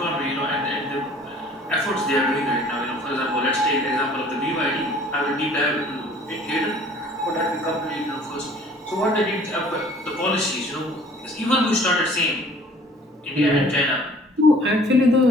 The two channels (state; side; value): normal; both; correlation 0.52